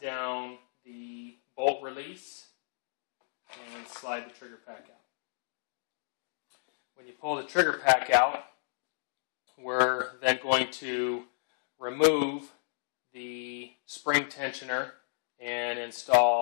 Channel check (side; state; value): right; silent; digital silence